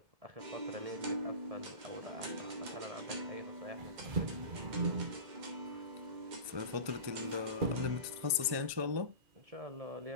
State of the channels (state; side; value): late; left; 1.3 ms